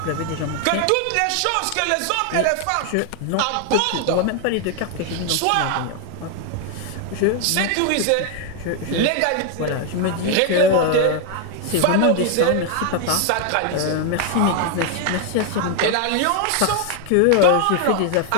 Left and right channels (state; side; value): different; both; correlation 0.00